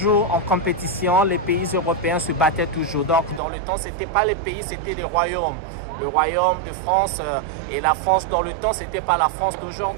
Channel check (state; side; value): drops out; left; at 3.4 s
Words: en compétition. Les pays européens se battaient toujours. Donc dans le temps, c'était pas les pays, c'était des royaumes. Le royaume de France et la France dans le temps, c'était pas la France